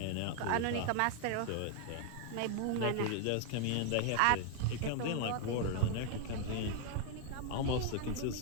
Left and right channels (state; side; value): different; both; correlation 0.00